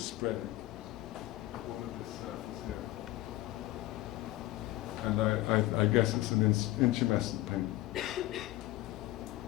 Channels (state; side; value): quieter; right; 17.2 dB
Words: spread it all of this surface here. And I guess it's an intumescent paint.